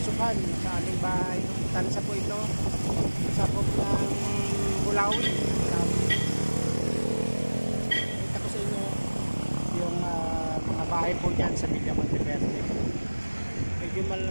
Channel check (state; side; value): inverted; both; correlation -1.00